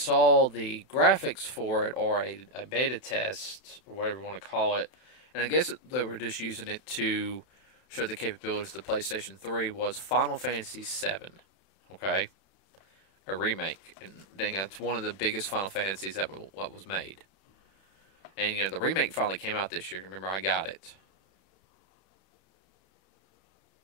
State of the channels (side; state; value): right; late; 31 ms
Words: the graphics for it, or a beta test, or whatever you want to call it, and I guess they were just using it to show the capabilities of the PlayStation 3, was Final Fantasy VII, okay? A remake, and that's one of the biggest Final Fantasies that was made. And, the remake finally came out this year. Remember, I got it.